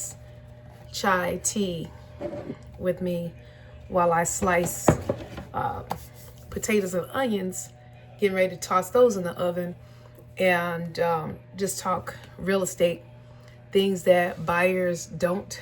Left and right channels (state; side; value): identical; both; correlation 1.00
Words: chai tea with me while I slice uh, potatoes and onions, getting ready to toss those in the oven, and just talk real estate, things that buyers don't